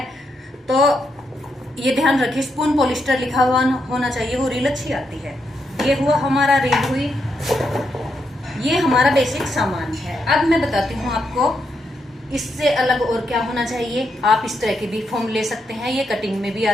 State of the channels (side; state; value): both; normal; correlation 0.81